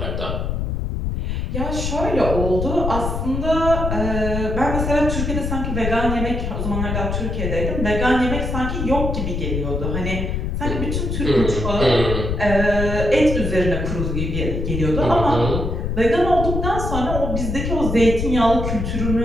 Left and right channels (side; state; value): left; noise; rumble, 2 dB below the sound